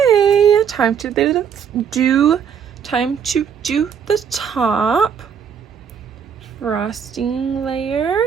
time to do the top frosting layer.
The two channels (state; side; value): quieter; left; 7.5 dB